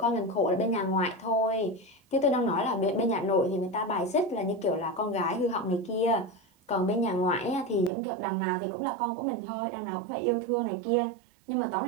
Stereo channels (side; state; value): left; drops out; at 7.9 s